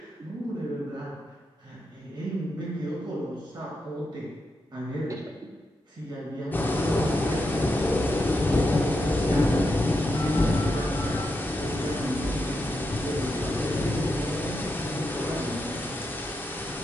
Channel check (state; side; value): normal; both; correlation 0.85